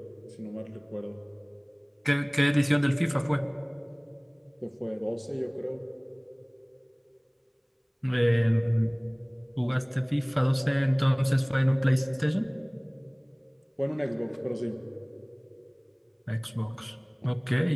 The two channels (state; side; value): identical; both; correlation 1.00